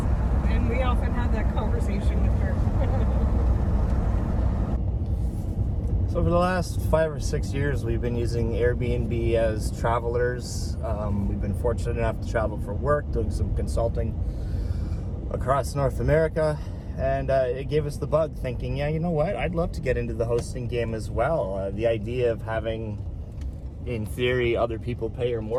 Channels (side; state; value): both; identical; correlation 1.00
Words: and we often have that conversation with her. So for the last 5 or 6 years, we've been using Airbnb as travelers. We've been fortunate enough to travel for work, doing some consulting across North America. And it gave us the bug, thinking, yeah, you know what? I'd love to get into the hosting game as well. The idea of having in theory, other people pay your